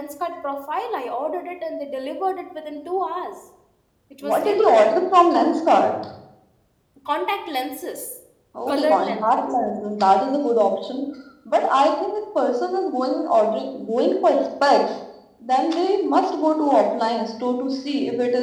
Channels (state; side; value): identical; both; correlation 1.00